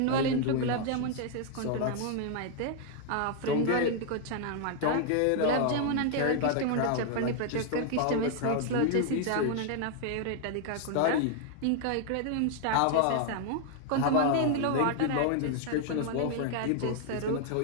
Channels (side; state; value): both; different; correlation 0.00